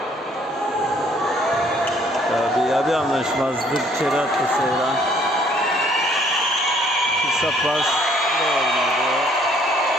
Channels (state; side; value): normal; both; correlation 0.62